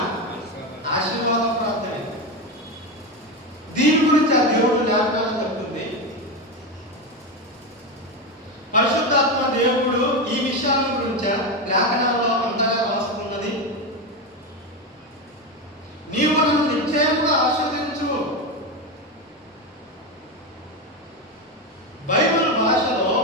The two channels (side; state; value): both; normal; correlation 0.15